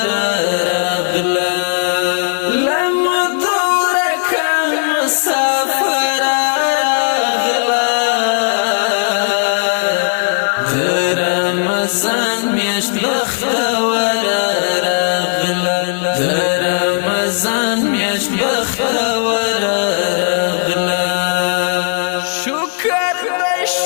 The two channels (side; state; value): right; silent; digital silence